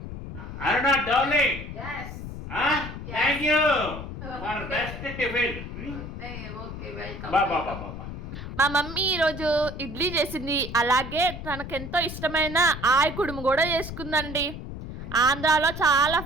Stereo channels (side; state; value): left; noise; rumble, 9 dB below the sound